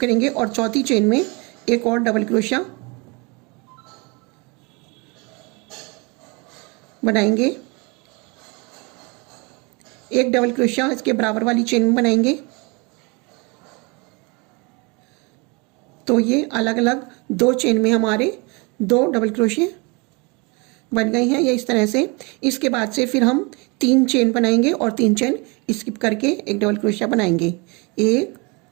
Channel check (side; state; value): left; quieter; 29.3 dB